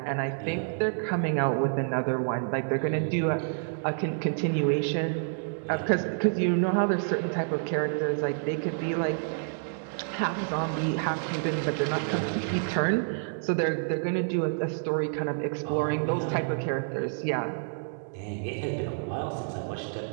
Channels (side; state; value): left; silent; digital silence